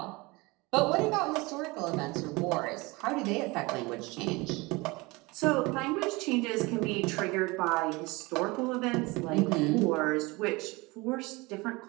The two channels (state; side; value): quieter; left; 24.1 dB